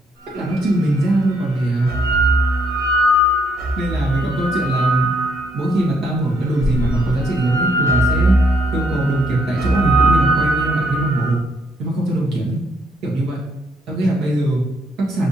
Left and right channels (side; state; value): both; normal; correlation 0.71